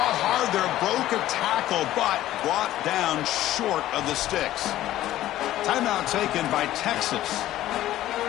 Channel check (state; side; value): quieter; right; 14.0 dB